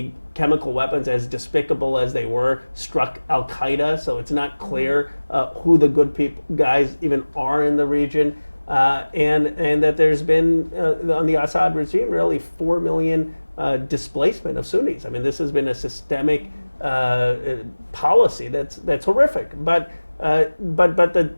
chemical weapons, as despicable as they were, struck Al Qaeda. So it's not clear who the good guys even are in the region, and that there's been on the Assad regime really 4 million displacement of Sunnis. I mean, this has been a systemic policy that's horrific. But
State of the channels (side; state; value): both; inverted; correlation -1.00